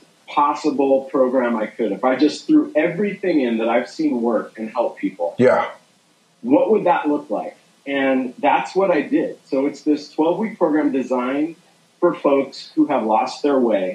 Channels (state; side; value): identical; both; correlation 1.00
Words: possible program I could? If I just threw everything in that I've seen work and help people, what would that look like? And that's what I did. So it's this 12-week program designed for folks who have lost their